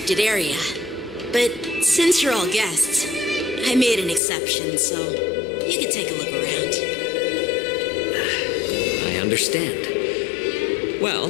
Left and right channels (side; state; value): right; drops out; at 4.2 s